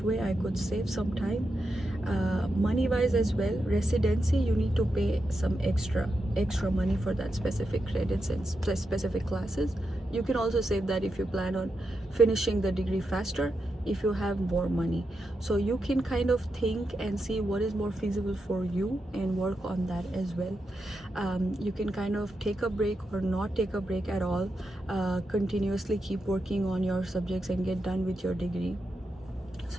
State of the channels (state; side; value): normal; both; correlation 0.87